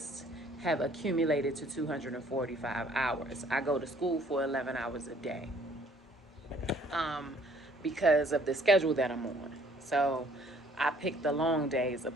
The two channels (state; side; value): normal; both; correlation 0.59